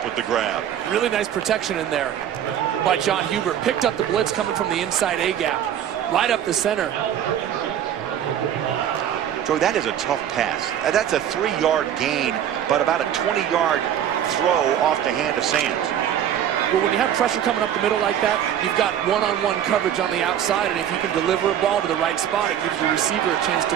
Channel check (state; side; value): quieter; left; 10.0 dB